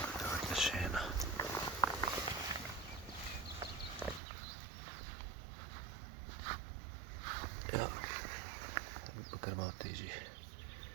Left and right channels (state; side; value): drops out; left; at 4.2 s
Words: Evo še ena. Ja, bi pa kar malo težji.